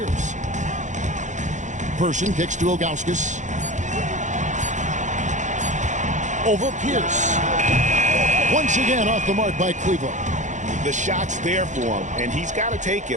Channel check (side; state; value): left; late; 0.35 ms